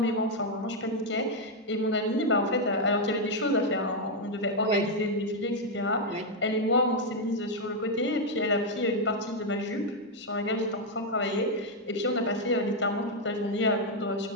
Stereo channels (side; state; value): both; normal; correlation 0.01